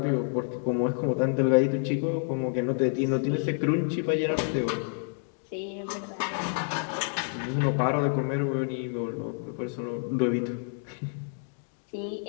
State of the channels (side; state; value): right; silent; 59 dB below the other